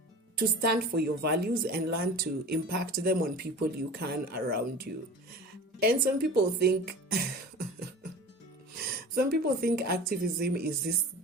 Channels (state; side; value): normal; both; correlation 0.37